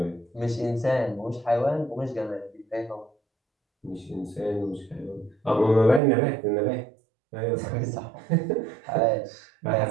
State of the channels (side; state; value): left; drops out; at 6.0 s